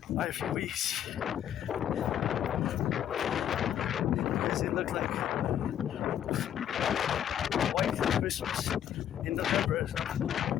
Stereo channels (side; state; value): right; quieter; 10.2 dB